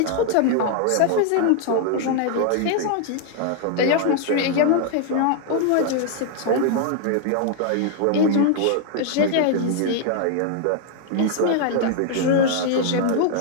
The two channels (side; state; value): both; different; correlation 0.00